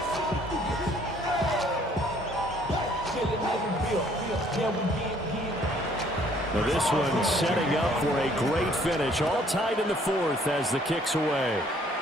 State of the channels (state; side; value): normal; both; correlation 0.61